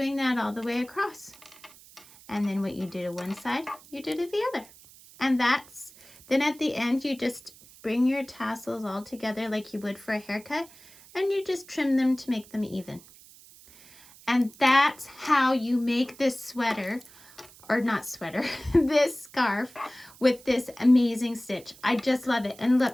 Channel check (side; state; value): right; noise; hiss, 23 dB below the sound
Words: that all the way across. And then what you do to one side, you do to the other. And that's, then at the end, you just bring your tassels all together like you would for a haircut, and you just trim them to make them even. And that's how you make this sweater, or not sweater, this scarf with this amazing stitch. I just love it. And